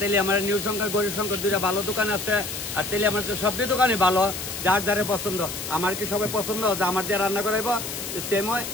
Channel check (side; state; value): left; noise; hiss, 7 dB below the sound